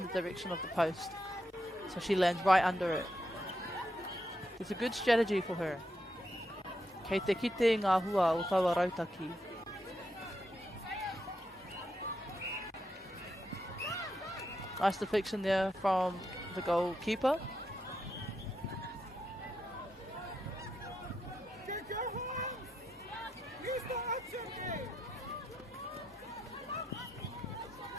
the direction of the post. So she lands right under it. It's a good strategy for her. Kei te kite ngā hua o taua rautaki. Nice deflection there from the goalkeeper.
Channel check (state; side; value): normal; both; correlation 0.83